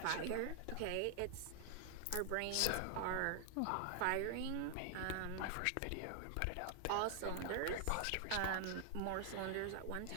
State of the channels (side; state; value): both; different; correlation 0.00